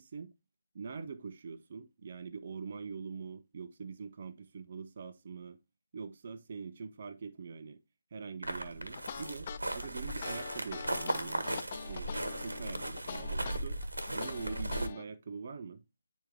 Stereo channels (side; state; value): both; inverted; correlation -0.88